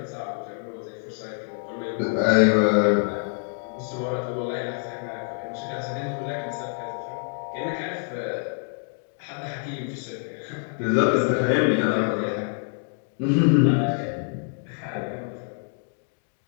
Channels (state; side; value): silent; right; 59 dB below the other